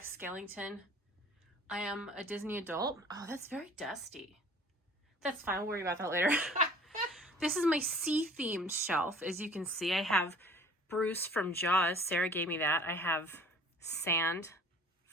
Skellington. I am a Disney adult. Oh, that's very dusty. That's fine. We'll worry about that later. This is my sea-themed shelf. As you can see, I have Bruce from Jaws. Sarah gave me that. I have sand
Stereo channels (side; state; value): both; normal; correlation 0.49